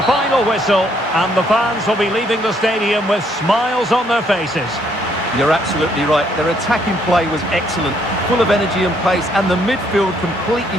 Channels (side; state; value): both; normal; correlation 0.69